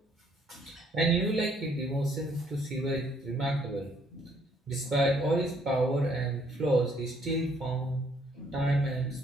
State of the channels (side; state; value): both; normal; correlation 0.66